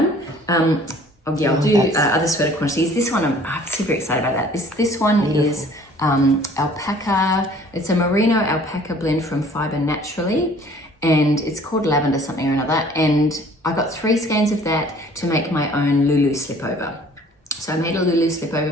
I'll do other sweater quantities. This one, I'm super excited about that. This one is alpaca. It's a merino alpaca blend from Fibre Naturally, and it's called Lavender something or another. And I got 3 skeins of that to make my own Lulu slipover. So I made a Lulu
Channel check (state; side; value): normal; both; correlation 0.53